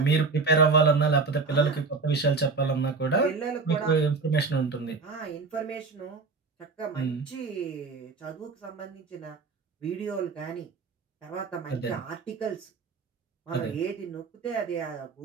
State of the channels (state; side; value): quieter; left; 4.4 dB